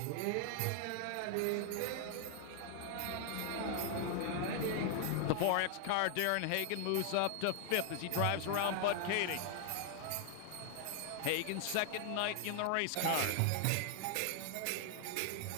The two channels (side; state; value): both; different; correlation 0.00